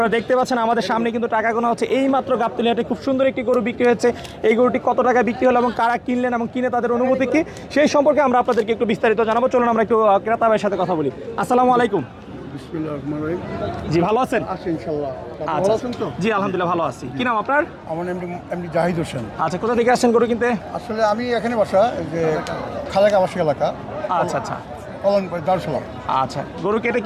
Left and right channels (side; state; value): both; identical; correlation 1.00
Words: দেখতে পাচ্ছেন আমাদের সামনে কিন্তু টাকা গোনা হচ্ছে। এই মাত্র গাবতলী হাটে খুব সুন্দর একটি গরু বিক্রি হয়েছে। এই গরুটি কত টাকা বিক্রি হলো এবং কারা কিনলেন এবং কিনে তাদের অনুভূতি কি, সেই সম্পর্কে আমরা আপনাদেরকে একটু বিস্তারিত জানাবো। চলুন আমরা একটু ক্রেতা ভাইয়ের সাথে কথা বলি। আসসালামু আলাইকুম। জি, ভালো আছেন? আচ্ছা, জি আলহামদুলিল্লাহ ভালো আছি। কি নাম আপনার? আমার এমনি জাহিদ হোসেন। আচ্ছা, কোথা থেকে আসছেন গরু কিনতে? আসলে আমি এখানে বাসা, যে খালেক আবাসিক এলাকা। আচ্ছা আচ্ছা দারুসালাম। আচ্ছা, গরু কেটে